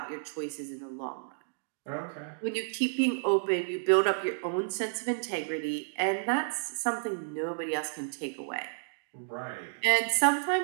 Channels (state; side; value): silent; left; digital silence